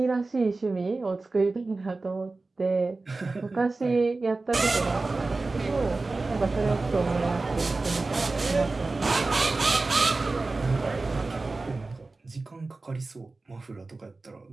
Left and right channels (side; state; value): left; quieter; 3.5 dB